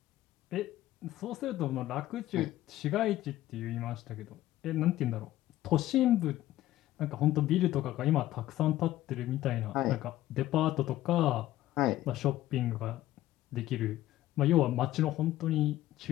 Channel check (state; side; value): quieter; right; 14.7 dB